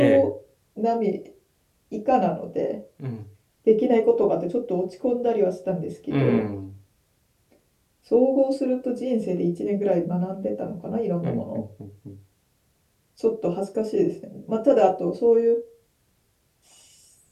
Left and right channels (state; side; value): identical; both; correlation 1.00